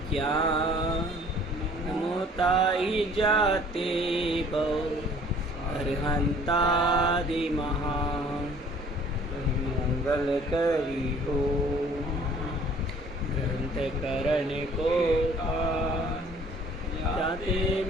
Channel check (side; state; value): both; normal; correlation 0.53